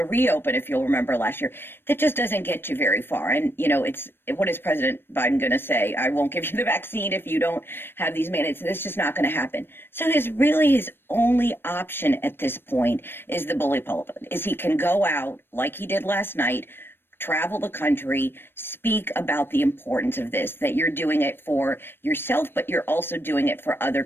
reopen, if you'll remember last year. That just doesn't get you very far. And, what is President Biden going to say? I won't give you the vaccine if you don't have these mandates. That's just not going to happen. So his only option at this point is the bully pulpit, is he can go out like he did last night, travel the country, speak about the importance of this, that you're doing it for yourself, but you're also doing it for other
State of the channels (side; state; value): right; late; 0.10 ms